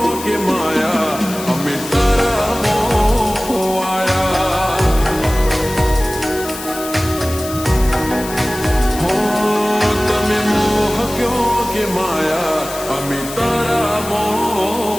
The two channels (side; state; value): left; noise; hiss, 11 dB below the sound